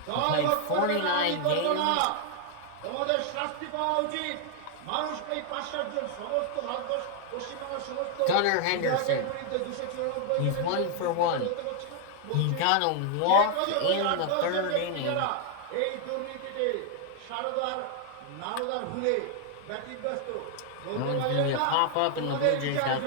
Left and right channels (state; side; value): different; both; correlation 0.00